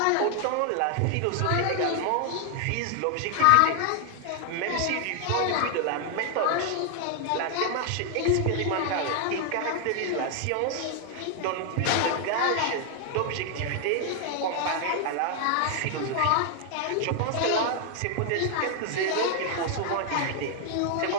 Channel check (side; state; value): both; different; correlation 0.00